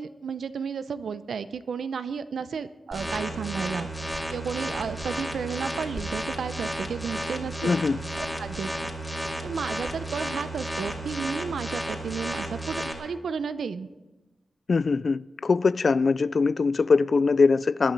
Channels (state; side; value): normal; both; correlation 0.89